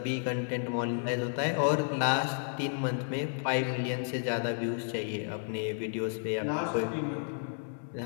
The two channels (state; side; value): silent; right; digital silence